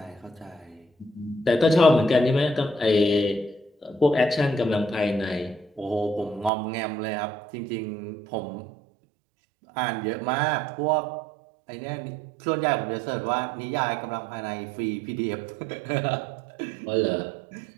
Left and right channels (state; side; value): drops out; left; at 6.5 s